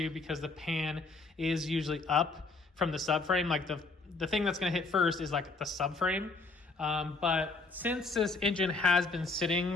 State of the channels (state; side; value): quieter; right; 3.7 dB